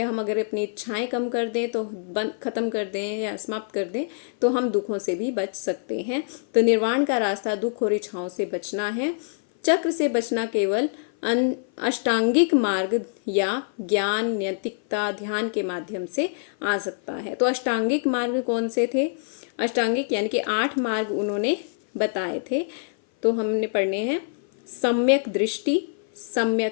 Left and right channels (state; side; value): silent; right; 57 dB below the other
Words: हम अगर अपनी इच्छाएं कम कर दें, तो खत्म कर दें या समाप्त कर दें, तो हम दुखों से भी बच सकते हैं। तो निर्वाण का रास्ता दुख और इच्छाओं से बचना है। चक्र से बचना केवल अष्टांगिक मार्ग या ज्ञान, नैतिकता, ध्यान के माध्यम से आ सकता है। तो अष्टांगिक मार्ग कौन से थे? अष्टांगिक यानी कि 8 मार्ग उन्होंने बताए थे, तो हमने पढ़ने हैं। सम्यक दृष्टि,